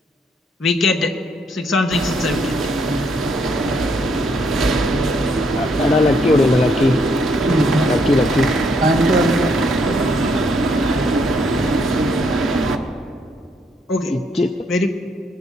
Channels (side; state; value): both; normal; correlation 0.71